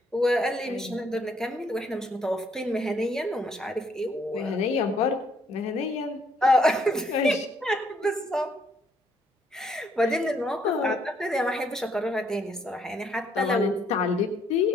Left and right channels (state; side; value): normal; both; correlation 0.69